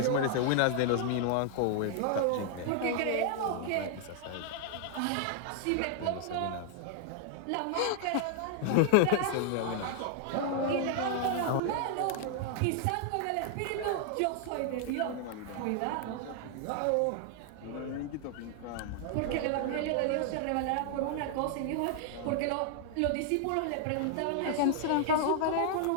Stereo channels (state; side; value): different; both; correlation -0.01